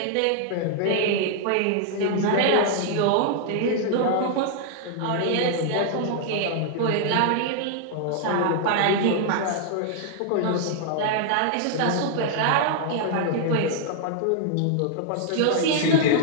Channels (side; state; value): both; different; correlation -0.01